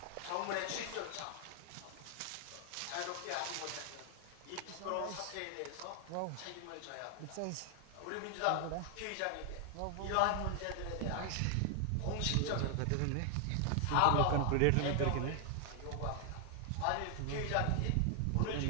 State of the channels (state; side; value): different; both; correlation 0.00